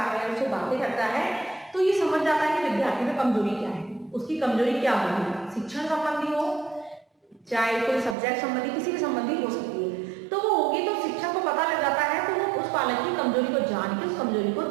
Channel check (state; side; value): drops out; left; at 8.2 s